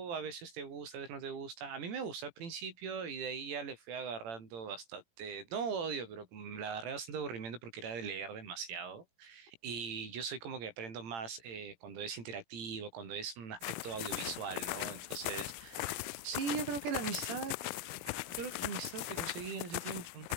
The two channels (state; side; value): late; left; 17 ms